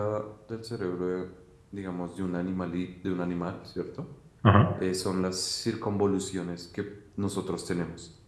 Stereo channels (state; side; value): identical; both; correlation 1.00